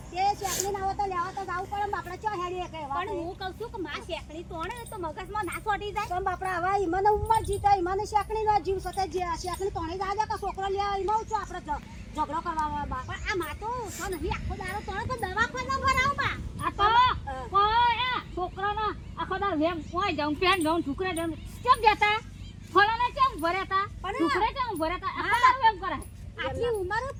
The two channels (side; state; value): both; identical; correlation 1.00